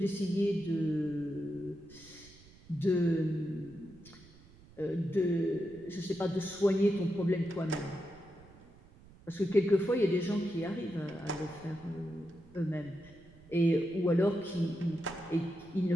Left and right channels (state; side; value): noise; right; rumble, 23 dB below the sound